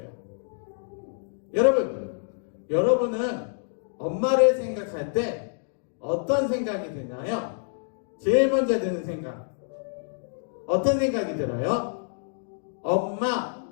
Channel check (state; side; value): silent; right; digital silence